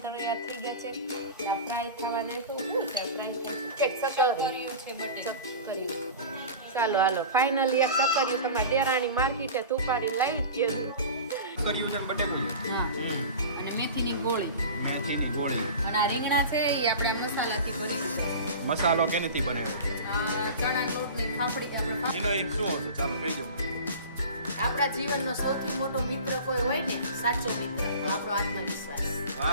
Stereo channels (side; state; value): both; inverted; correlation -0.34